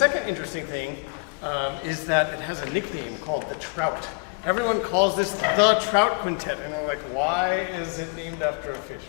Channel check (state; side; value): quieter; right; 34.6 dB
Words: interesting thing is that it has a nickname called the Trout. Everyone calls this the Trout Quintet, and I'm like, why is it named after a